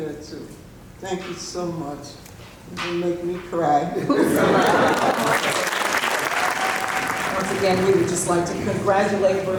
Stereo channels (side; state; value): both; identical; correlation 1.00